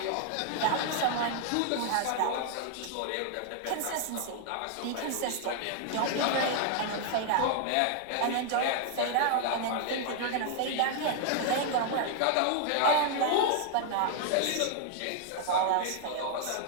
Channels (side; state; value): both; different; correlation 0.00